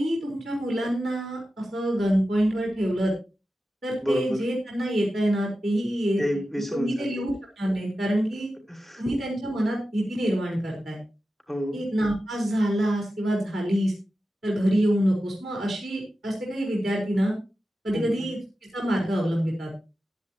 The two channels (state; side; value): normal; both; correlation 0.92